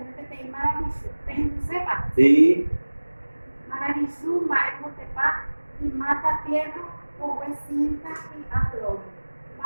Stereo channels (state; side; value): inverted; both; correlation -1.00